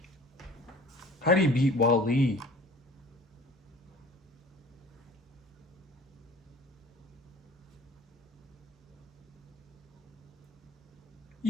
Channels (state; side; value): normal; both; correlation 0.46